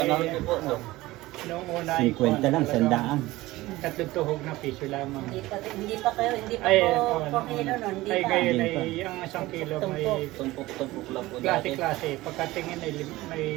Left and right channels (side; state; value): left; quieter; 18.5 dB